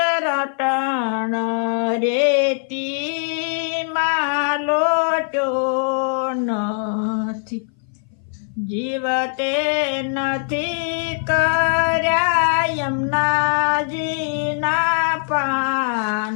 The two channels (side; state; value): right; silent; 60 dB below the other